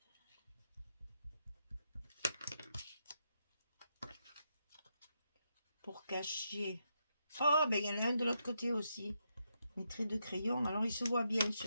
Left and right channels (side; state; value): both; inverted; correlation -0.82